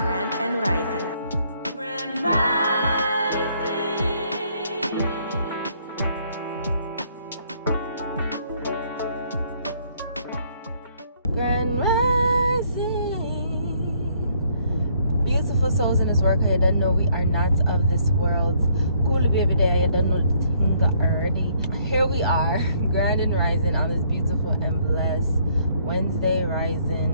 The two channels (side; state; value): both; inverted; correlation -0.67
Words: and rising. Grand rising. Grand rising. Beautiful souls in this work. I don't know we are not of this world. Cool baby day. I don't know the thing already. Here we are, grand and rising on this beautiful and blessed Wednesday